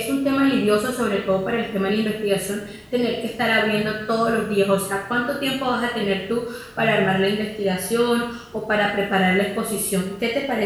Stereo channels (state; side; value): identical; both; correlation 1.00